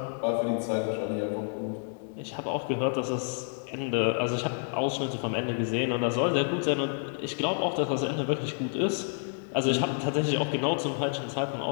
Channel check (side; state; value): right; silent; 58 dB below the other